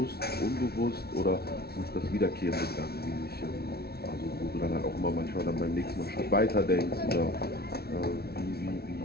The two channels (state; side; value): late; right; 0.45 ms